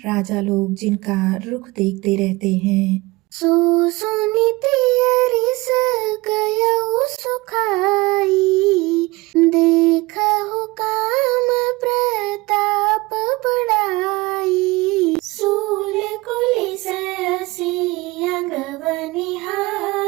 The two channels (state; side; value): quieter; left; 22.4 dB